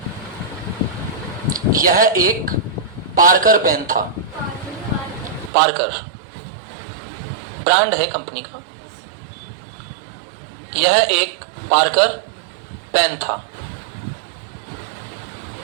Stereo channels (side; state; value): left; drops out; at 5.5 s